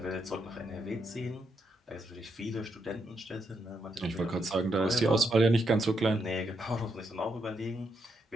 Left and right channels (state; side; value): normal; both; correlation 0.80